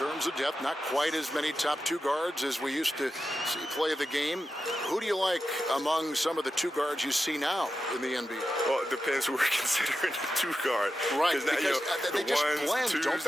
of depth, not quite as many top 2 guards as we used to see play the game. Who do you like among some of the 2 guards you see now in the NBA? Well, it depends who we're considering the 2 guard. Right, because they just blend, twos, don't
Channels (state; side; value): normal; both; correlation 0.91